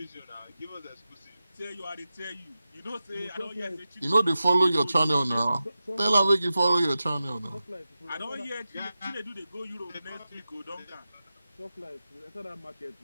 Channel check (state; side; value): inverted; both; correlation -0.92